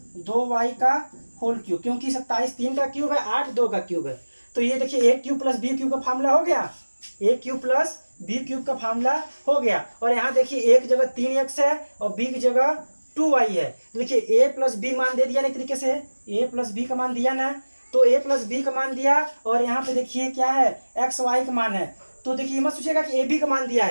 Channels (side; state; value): both; inverted; correlation -1.00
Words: 2y का होल क्यूब, क्योंकि 27 3 का क्यूब है 8 2 का क्यूब है। तो ये देखिए a³ + b³ का फार्मूला हो गया, a³ + b³ का फार्मूला हो गया। और यहाँ देखिए एक जगह 3x है और b की जगह 2y है। देखिए a + b मान दे दिया ना, एक तरीके से a + b का मान दिया ना, तो a + b का मान दिया और यहाँ पे देखिए क्या है x y का मान है। तो देखिए मत सोचिएगा कि ab का मान दिया